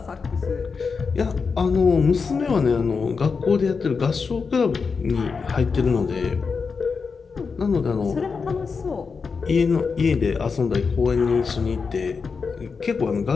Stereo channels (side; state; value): right; quieter; 5.2 dB